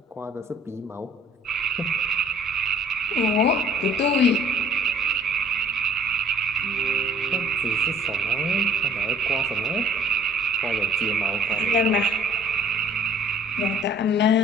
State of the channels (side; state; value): both; normal; correlation 0.55